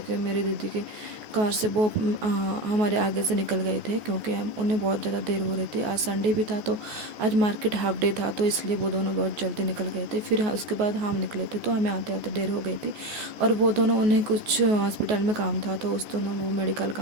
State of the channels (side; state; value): left; late; 14 ms